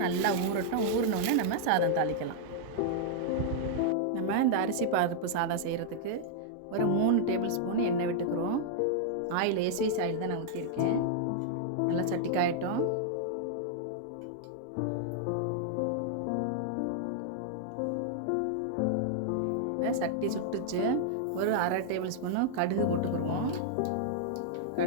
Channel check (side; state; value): both; different; correlation -0.01